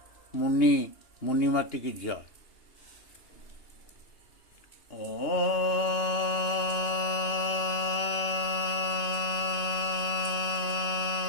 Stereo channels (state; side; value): late; right; 2.9 ms